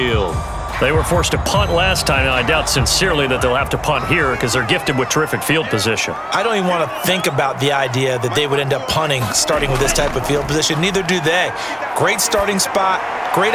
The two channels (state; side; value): identical; both; correlation 1.00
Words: They were forced to punt last time. Now, I doubt sincerely that they'll have to punt here because they're gifted with terrific field position. I don't even want to think about the idea that they would end up punting starting with this type of field position. Neither do they. Great starting spot,